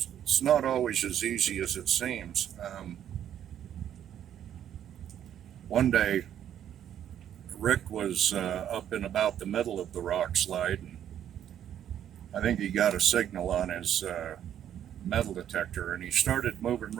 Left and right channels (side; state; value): left; quieter; 10.2 dB